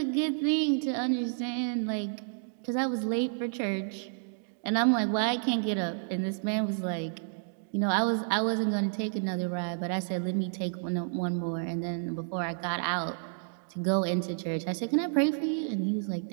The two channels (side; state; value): left; silent; digital silence